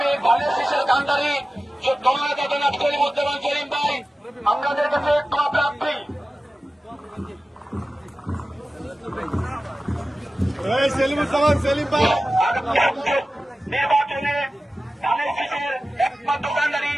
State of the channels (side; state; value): both; normal; correlation 0.95